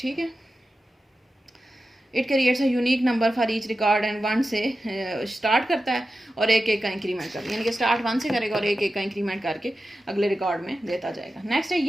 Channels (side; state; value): both; normal; correlation 0.92